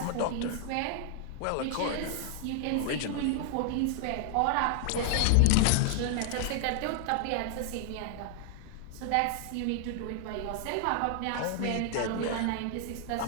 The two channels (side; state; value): both; different; correlation 0.00